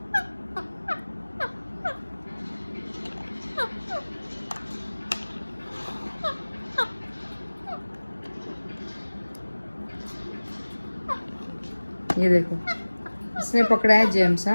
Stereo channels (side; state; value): both; inverted; correlation -1.00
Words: ये देखो, इसने पकड़ा है जेम्स।